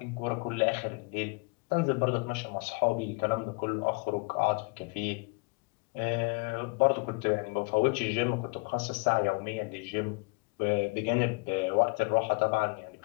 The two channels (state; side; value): quieter; right; 29.9 dB